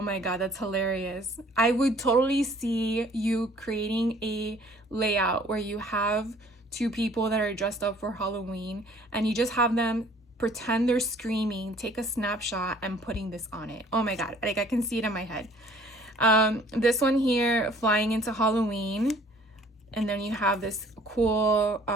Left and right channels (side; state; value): both; normal; correlation 0.55